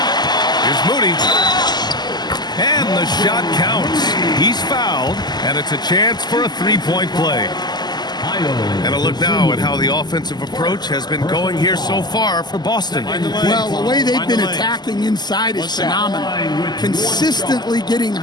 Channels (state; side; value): late; right; 0.21 ms